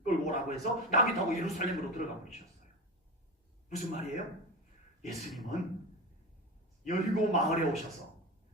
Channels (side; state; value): both; normal; correlation 0.23